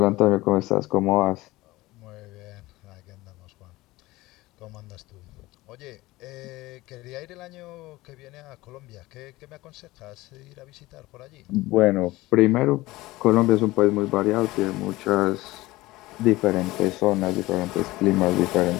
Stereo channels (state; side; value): quieter; right; 19.1 dB